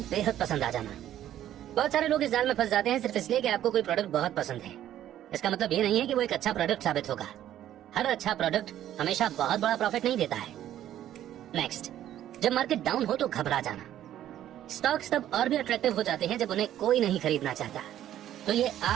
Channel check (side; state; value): left; quieter; 11.9 dB